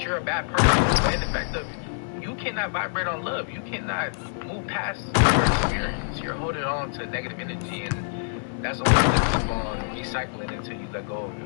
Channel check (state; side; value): silent; right; digital silence